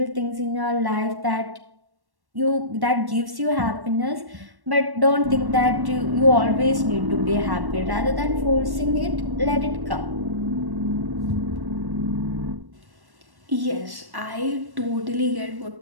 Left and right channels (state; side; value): late; left; 1.1 ms